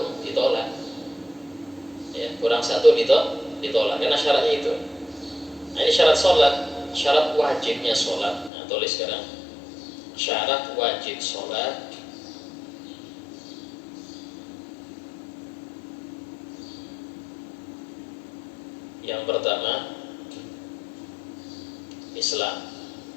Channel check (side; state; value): right; drops out; at 8.5 s